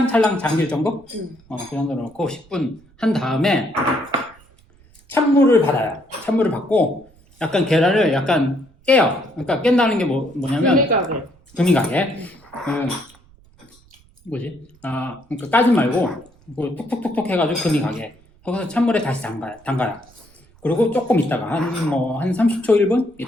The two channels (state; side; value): noise; right; rumble, 29 dB below the sound